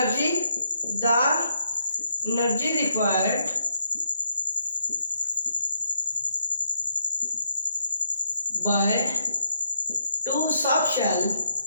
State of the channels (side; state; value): both; inverted; correlation -0.75